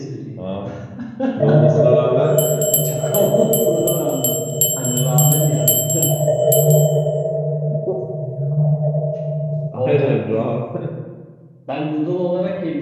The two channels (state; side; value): identical; both; correlation 1.00